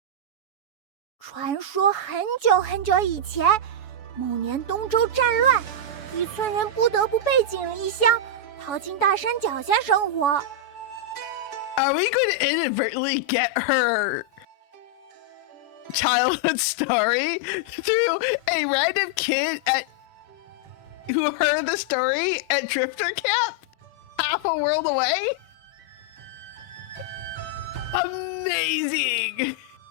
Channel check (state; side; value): late; right; 7.0 ms